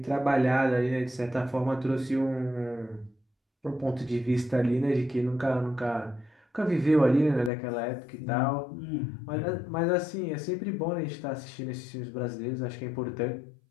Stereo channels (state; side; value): drops out; right; at 7.5 s